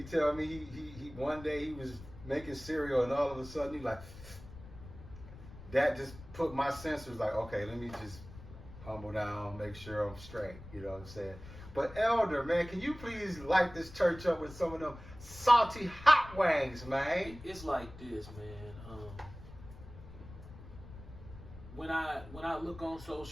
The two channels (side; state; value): left; noise; rumble, 16 dB below the sound